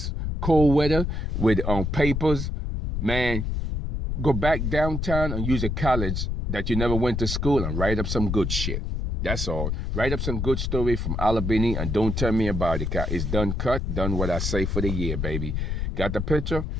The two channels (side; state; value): left; noise; rumble, 2 dB below the sound